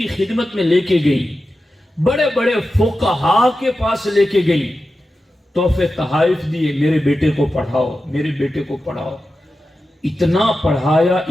خدمت میں لے کے گئی، بڑے بڑے فقہاء کے پاس لے کے گئی، تحفے تحائف دیے، میرے بیٹے کو پڑھاؤ، میرے بیٹے کو پڑھاؤ۔ اتنا پڑھایا،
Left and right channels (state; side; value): normal; both; correlation 0.92